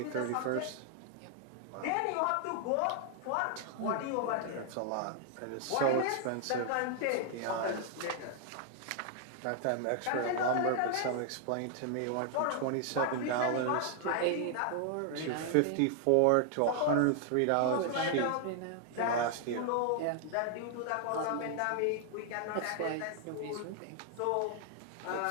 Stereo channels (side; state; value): both; different; correlation 0.00